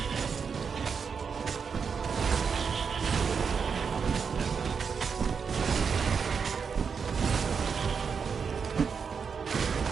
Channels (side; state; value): left; quieter; 6.0 dB